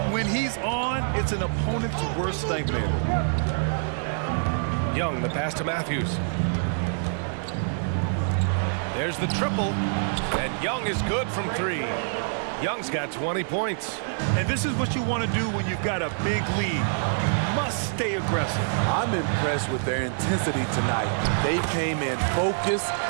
When he's on, it's an opponent's worst nightmare. Young, the pass to Matthews. There's the triple, and Young is good from 3. Young's got 20 points. And this is what you want to do when you've got a big lead. Must stay aggressive. I'm impressed with their intensity tonight. They came in focused,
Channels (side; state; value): left; silent; digital silence